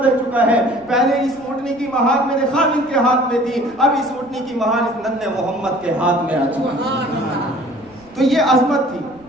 چکا ہے. پہلے اس اونٹنی کی مہار میرے خامن کے ہاتھ میں تھی، اب اس اونٹنی کی مہار اس ننھے محمد کے ہاتھ میں آ چکی. تو یہ عظمت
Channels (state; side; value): noise; right; rumble, 28 dB below the sound